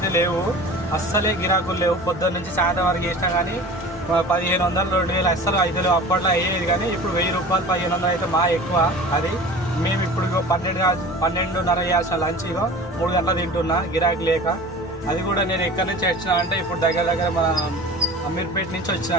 లేవు, అస్సలే గిరాకులు లేవు. పొద్దున్న నుంచి సాయంత్రం వరకు చేసినా కానీ 1500 2000 అస్సలు అయితే లేవు. అప్పట్లో అయ్యేది కానీ ఇప్పుడు 1000 రూపాయలు 1500 అయితే మా ఎక్కువ. అది మేము ఇప్పుడు 12:30 చేసిన లంచ్ 3 గంటలు తింటున్నా గిరాకీ లేక. అది కూడా నేను ఎక్కడి నుంచి వచ్చినా అంటే ఇప్పుడు దగ్గర మన అమీర్పేట నుంచి వచ్చిన.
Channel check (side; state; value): both; normal; correlation 0.38